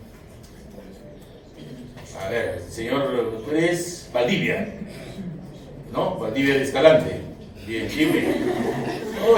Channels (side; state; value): both; identical; correlation 1.00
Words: A ver, señor, tú eres Valdivia, ¿no? Valdivia de Escalante. Bien, dime. No,